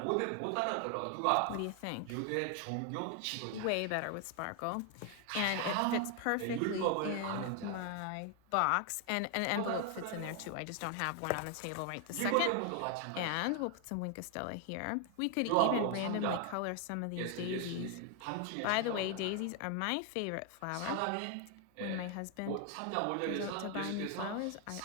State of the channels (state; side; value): different; both; correlation 0.00